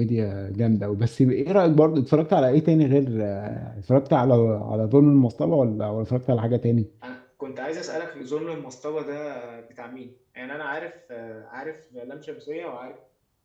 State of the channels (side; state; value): both; identical; correlation 1.00